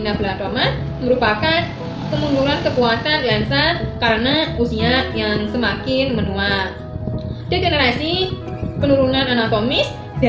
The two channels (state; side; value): identical; both; correlation 1.00